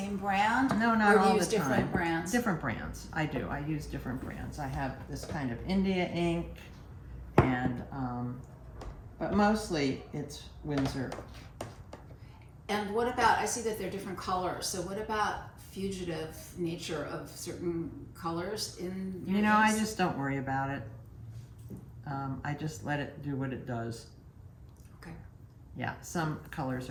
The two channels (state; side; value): identical; both; correlation 1.00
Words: brand? No, not all the time. Or do you use different brands? Different brands, I do. I use different brands. I have this kind of India ink, and but mostly it's Winsor. And what about, I see that they're different colors, so what about fugitive nature of certain colors in your inks? I just don't worry about it. I just let it do what it does. Okay. Yeah, some colors